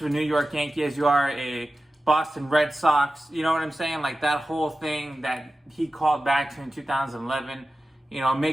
a New York Yankee as you are a Boston Red Sox, you know what I'm saying? Like that whole thing that he called back to in 2011, you know,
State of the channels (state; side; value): normal; both; correlation 0.94